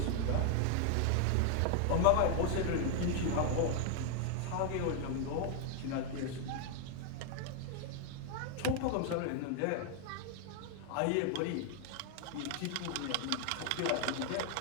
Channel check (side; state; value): both; different; correlation 0.00